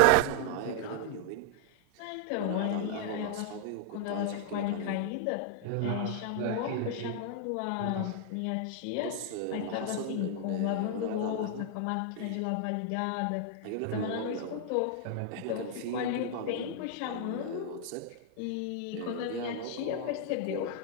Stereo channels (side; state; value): both; different; correlation -0.01